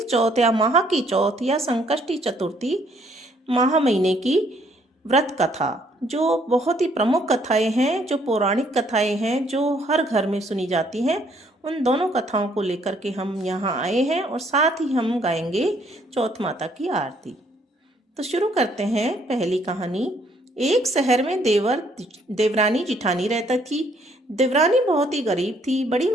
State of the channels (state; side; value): normal; both; correlation 0.66